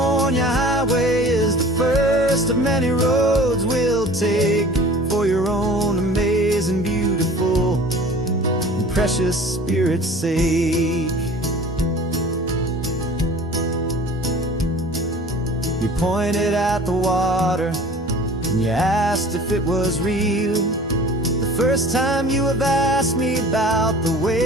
highway is the first of many roads we'll take for your own amazing, beautiful, and precious spirit's sake. You pointed at the water and you asked if it was real. The first time you have asked me about the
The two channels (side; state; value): both; normal; correlation 0.44